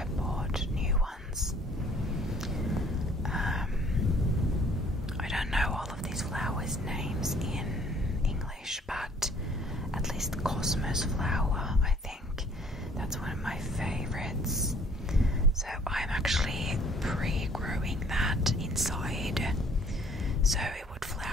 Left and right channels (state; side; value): normal; both; correlation 0.58